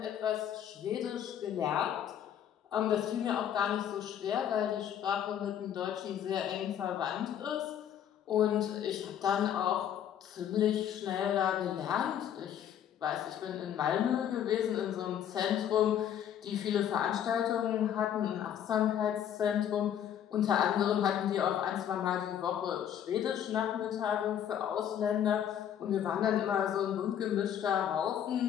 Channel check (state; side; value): quieter; right; 9.7 dB